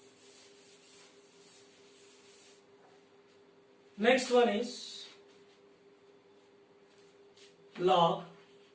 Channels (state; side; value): identical; both; correlation 1.00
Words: next one is log